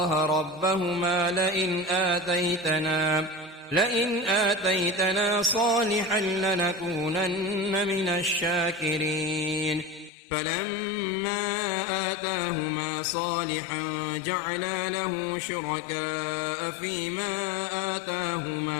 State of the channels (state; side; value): drops out; right; at 10.1 s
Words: ربهما لئن آتيتنا صالحا لنكونن من الشاكرين فلما آتاهما صالحا جعلا له شركاء فيما